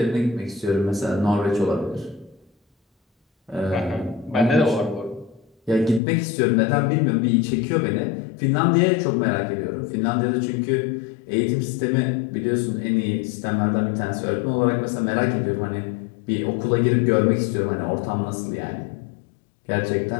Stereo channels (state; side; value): drops out; right; at 6.0 s